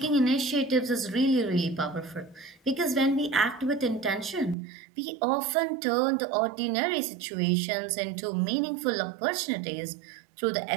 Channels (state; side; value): drops out; left; at 4.5 s